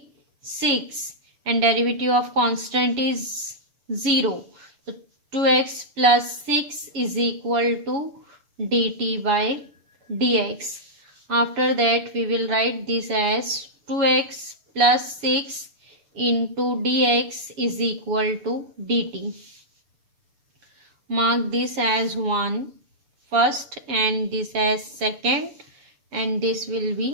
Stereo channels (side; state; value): left; late; 6.9 ms